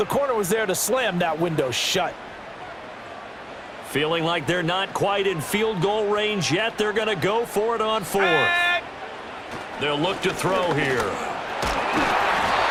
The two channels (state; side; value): identical; both; correlation 1.00